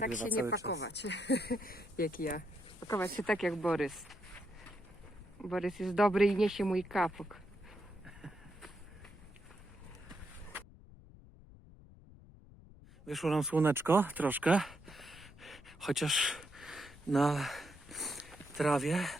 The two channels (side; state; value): left; noise; rumble, 20 dB below the sound